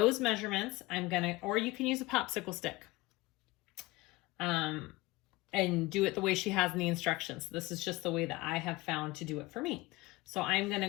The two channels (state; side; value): quieter; right; 20.7 dB